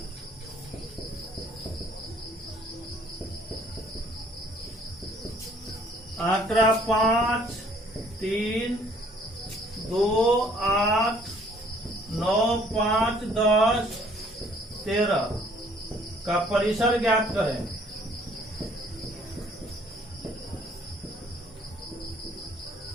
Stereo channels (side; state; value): both; normal; correlation 0.59